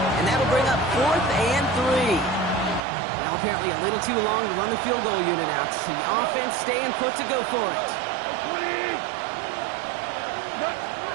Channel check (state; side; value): drops out; left; at 2.8 s